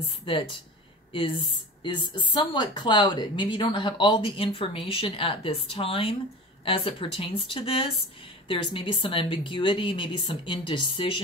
that is somewhat clouded. Maybe you don't have all the information at this time as it pertains to this. There's maybe some ambiguity, maybe some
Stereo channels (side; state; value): both; normal; correlation 0.34